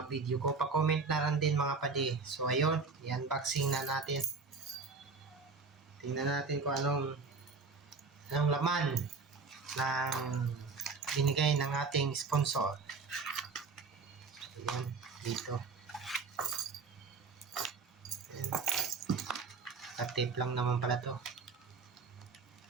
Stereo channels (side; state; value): left; quieter; 4.6 dB